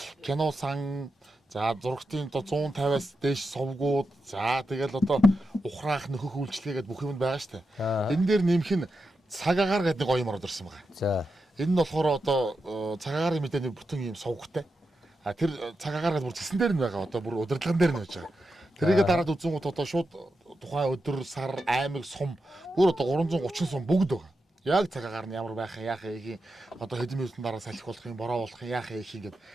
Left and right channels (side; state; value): both; normal; correlation 0.88